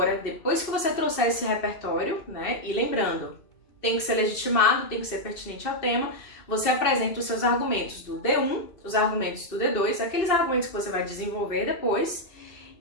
depois que você trouxer esse repertório, né, e lembrando, tem que ser legitimado, tem que ser pertinente ao tema, você apresenta os seus argumentos do D1, os argumentos do D2, aqueles argumentos que você vai desenvolver depois,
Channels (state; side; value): late; right; 2.7 ms